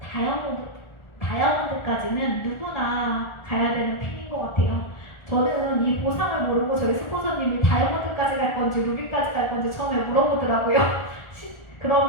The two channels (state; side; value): late; right; 1.4 ms